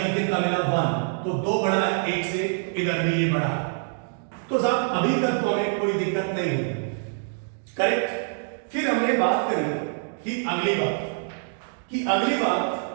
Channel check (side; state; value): left; silent; digital silence